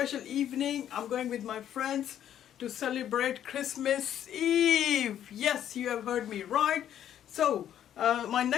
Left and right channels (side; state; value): right; quieter; 10.6 dB